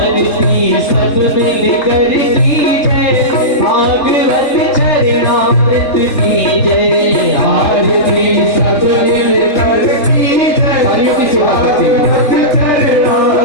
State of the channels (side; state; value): right; late; 3.8 ms